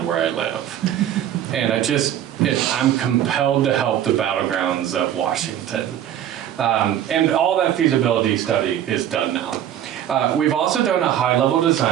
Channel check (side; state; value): left; quieter; 10.9 dB